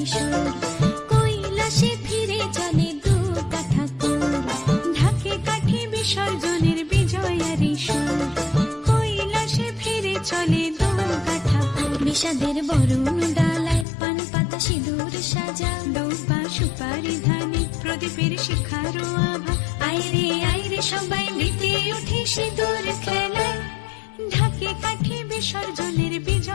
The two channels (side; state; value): right; drops out; at 13.9 s